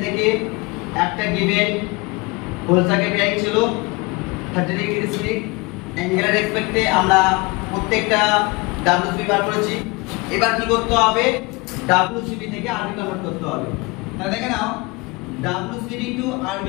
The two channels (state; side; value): quieter; right; 26.4 dB